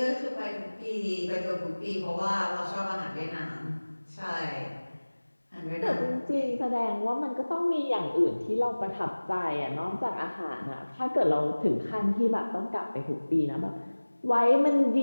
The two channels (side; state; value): both; inverted; correlation -1.00